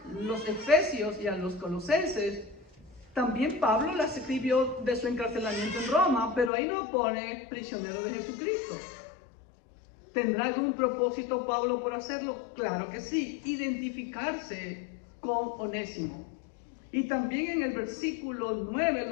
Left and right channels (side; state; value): right; drops out; at 6.5 s